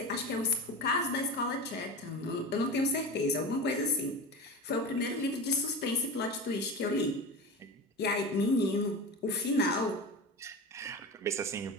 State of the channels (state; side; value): normal; both; correlation 0.28